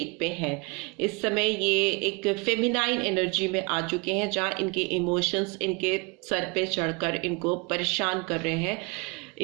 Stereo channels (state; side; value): quieter; left; 29.1 dB